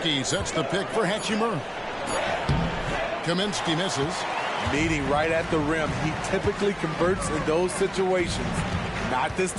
sets the pick for Hachimura. Kaminsky misses. Meeting right at the rim. He typically converts in those situations. Not this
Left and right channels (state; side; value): identical; both; correlation 1.00